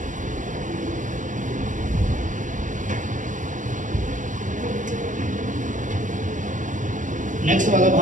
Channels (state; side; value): late; left; 0.37 ms